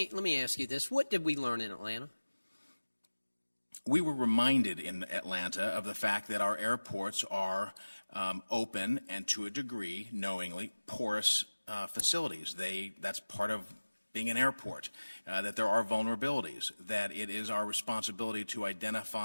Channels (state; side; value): inverted; both; correlation -1.00